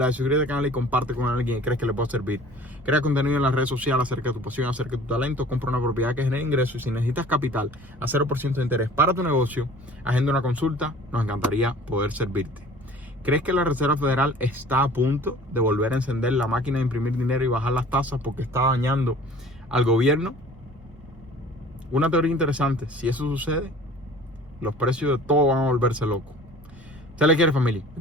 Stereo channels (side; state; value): both; normal; correlation 0.47